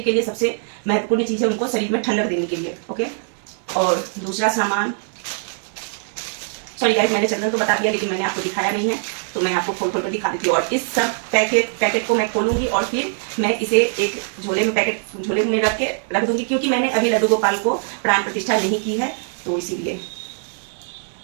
के लिए सबसे महत्वपूर्ण चीज है, उनको शरीर में ठंडक देने के लिए। ओके, और दूसरा सामान, सॉरी गाइस, मैंने चंदन तो बता दिया लेकिन मैंने आपको दिखाया नहीं है, तो मैं आपको खोल कर दिखा देती हूँ। और इस सब पैकेट को मैं खोलूंगी और फिर मैं इसे एक झोले में रख दूंगी, क्योंकि मैंने अभी लड्डू गोपाल को प्राण प्रतिष्ठा नहीं की है, तो इसीलिए।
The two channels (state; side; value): silent; left; digital silence